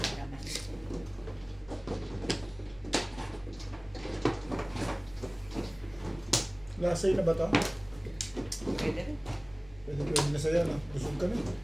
Naman. Lasay na ba ito? Pwede rin. Pwede na sa'yo na. Busog ka na.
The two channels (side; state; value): left; noise; hum, 23 dB below the sound